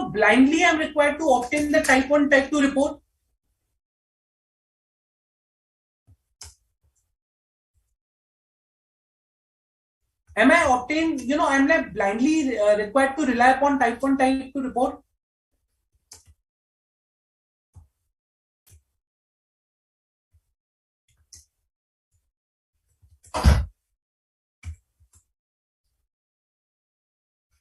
blindly I'm required to obtain the type 1, type 2 report? Am I obtained, I'm like blindly required to rely upon type 1, type 2 report?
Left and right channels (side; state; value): both; identical; correlation 1.00